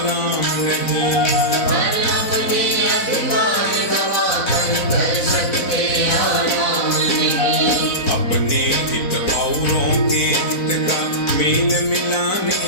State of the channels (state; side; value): late; right; 4.0 ms